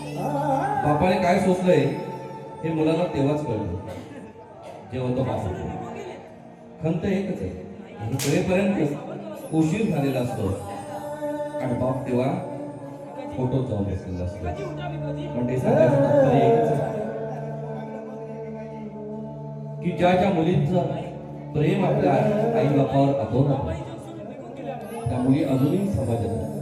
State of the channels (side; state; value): both; identical; correlation 1.00